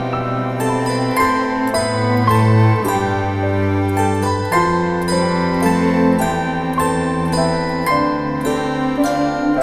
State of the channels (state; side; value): identical; both; correlation 1.00